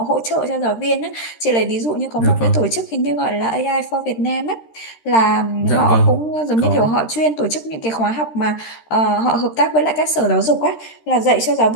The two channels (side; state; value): right; late; 13 ms